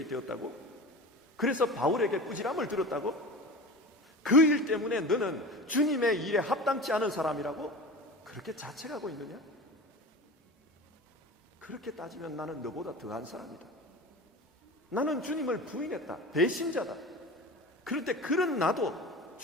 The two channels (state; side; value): normal; both; correlation 0.33